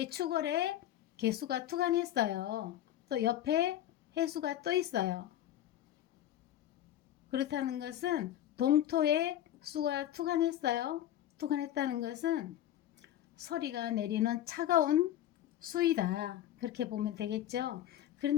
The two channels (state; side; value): quieter; right; 12.1 dB